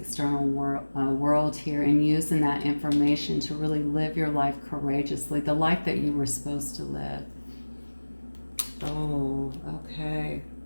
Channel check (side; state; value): both; inverted; correlation -1.00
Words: world here, and using that information to really live your life courageously, the life that you were supposed to live. Oh, okay,